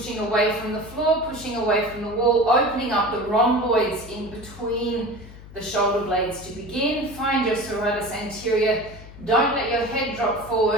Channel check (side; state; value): left; noise; hum, 17 dB below the sound